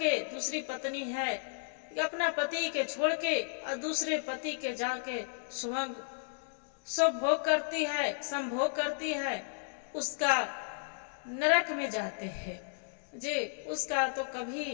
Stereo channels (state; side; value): silent; right; digital silence